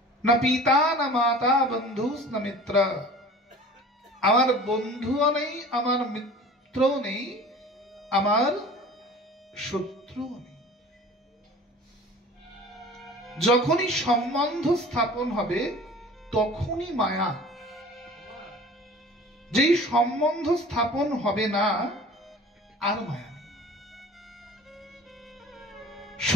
न पिता न माता बंधु न मित्र। আমার বন্ধুও নেই, আমার মিত্রও নেই, আমার শত্রুও নেই। যখনই সম্বন্ধ স্থাপন হবে তখনই মায়া। যেই সম্বন্ধ স্থাপন হবে না, আর মায়া।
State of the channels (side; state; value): both; normal; correlation 0.43